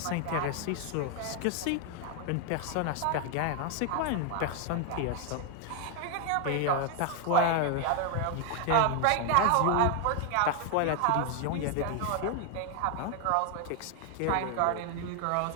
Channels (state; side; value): different; both; correlation 0.01